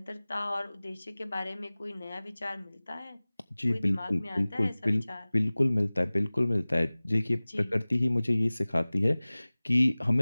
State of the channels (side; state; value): both; inverted; correlation -0.99